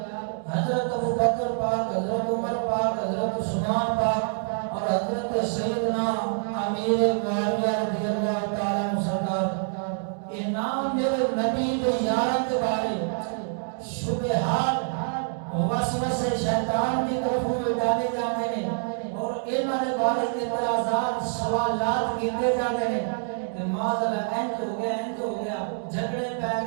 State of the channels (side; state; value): left; silent; 61 dB below the other